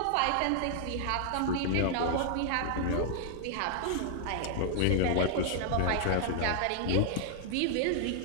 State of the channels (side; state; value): both; different; correlation 0.00